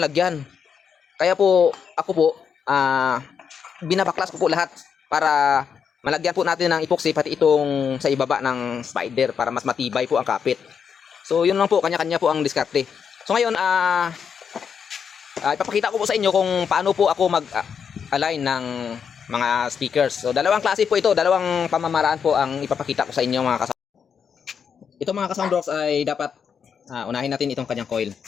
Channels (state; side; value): quieter; right; 6.9 dB